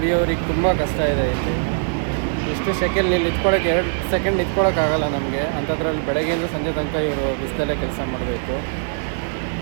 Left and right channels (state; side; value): silent; left; 65 dB below the other